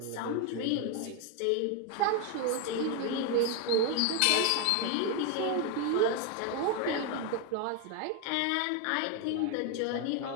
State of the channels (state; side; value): different; both; correlation 0.01